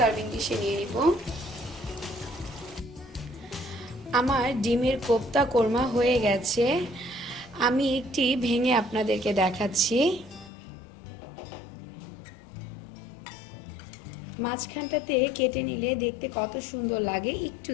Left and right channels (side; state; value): right; drops out; at 10.5 s